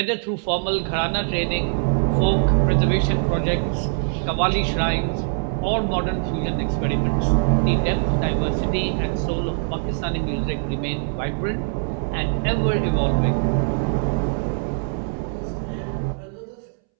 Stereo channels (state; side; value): silent; left; 64 dB below the other